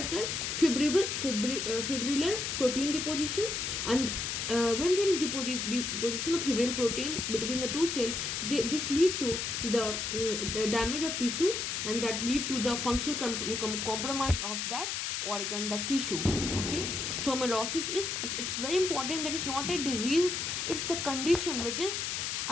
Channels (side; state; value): left; noise; hiss, 2 dB below the sound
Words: Fibrillar protein deposition, and when there is deposition of fibrillar protein between the two cells, this lead to the damage of tissue, and that lead to the functional compromise of that organ, that tissue. Okay, so amyloidosis is it's very important. That is not a disease, it's the condition which is